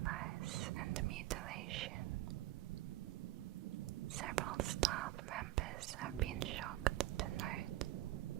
and mutilation. Several staff members have been shocked to note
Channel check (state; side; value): quieter; left; 16.0 dB